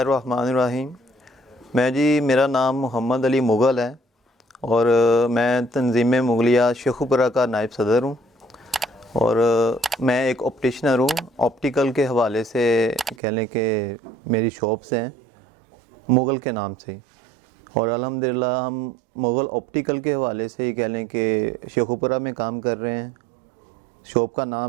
الرحیم۔ میں جی، میرا نام محمد علی مغل ہے، اور میں تنظیم مغلیہ شیخوپورہ کا نائب صدر ہوں، اور میں ایک آپٹیشنر ہوں۔ آپٹیکل کے حوالے سے کہہ لیں کہ میری شاپس ہیں مغل کے نام سے، اور الحمدللہ ہم مغل آپٹیکل کے حوالے سے ہی کہہ لیں کہ شیخوپورہ میں کام کر رہے ہیں۔ شاپ کا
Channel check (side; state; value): left; drops out; at 13.2 s